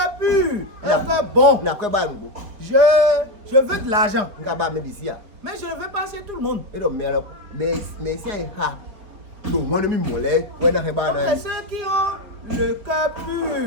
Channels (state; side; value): late; left; 4.6 ms